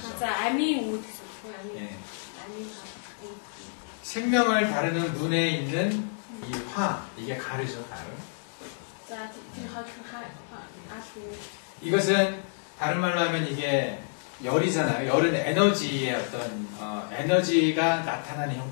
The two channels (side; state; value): right; silent; digital silence